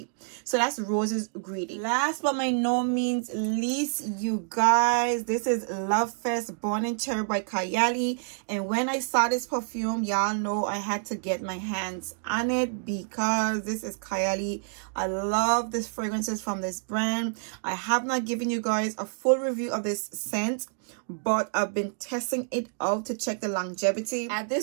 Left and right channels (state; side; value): silent; left; digital silence